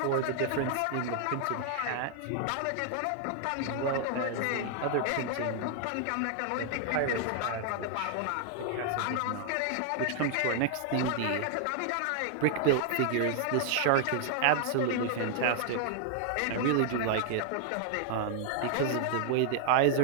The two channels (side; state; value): both; different; correlation 0.00